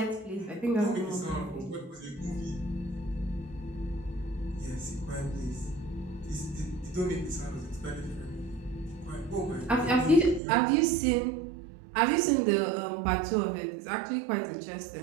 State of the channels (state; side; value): drops out; left; at 10.4 s